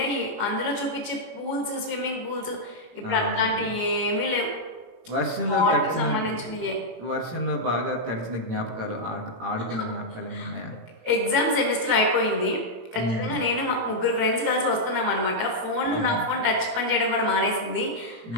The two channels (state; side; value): late; left; 18 ms